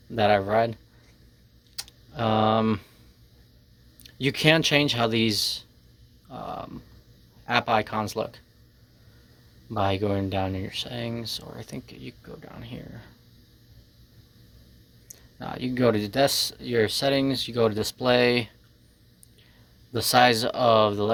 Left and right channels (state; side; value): identical; both; correlation 1.00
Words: that I've read. You can change how these app icons look by going down in your settings, or I think you can go down here. You can go to your settings, you go to display. The size of the